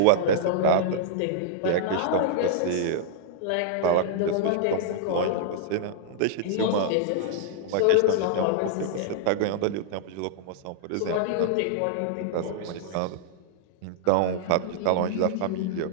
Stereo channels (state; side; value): different; both; correlation -0.01